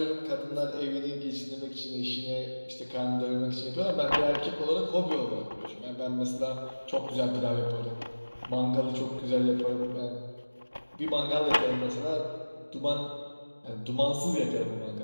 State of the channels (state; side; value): inverted; both; correlation -1.00